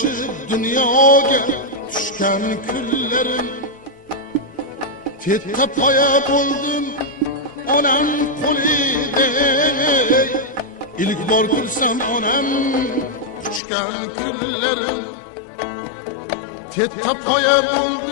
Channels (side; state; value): right; drops out; at 13.6 s